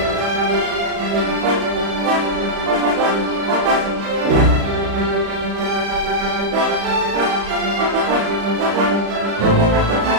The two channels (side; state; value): left; late; 35 ms